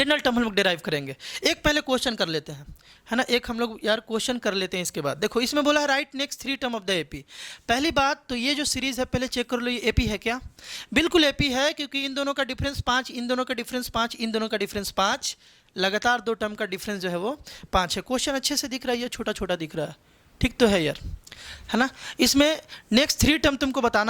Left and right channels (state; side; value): identical; both; correlation 1.00